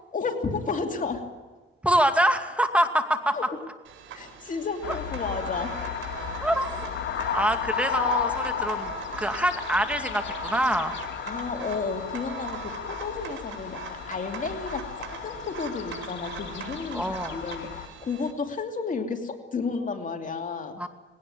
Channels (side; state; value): both; normal; correlation 0.51